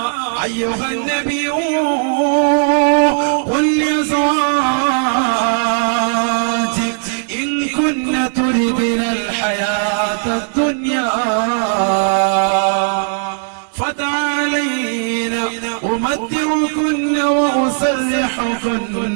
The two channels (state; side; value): silent; left; digital silence